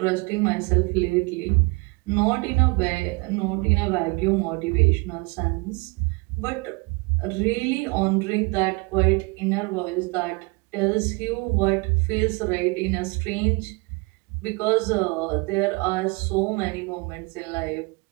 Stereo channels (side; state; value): left; quieter; 27.9 dB